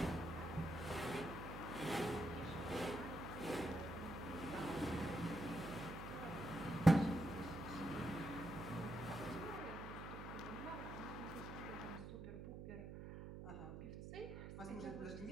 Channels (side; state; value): right; noise; hum, 8 dB below the sound